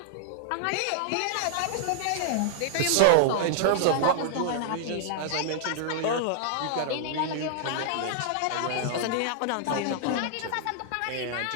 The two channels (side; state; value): both; different; correlation -0.01